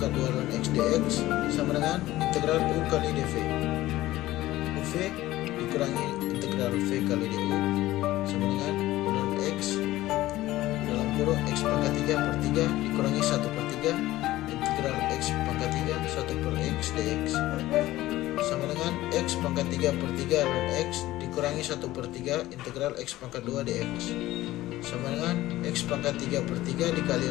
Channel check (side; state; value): right; quieter; 16.3 dB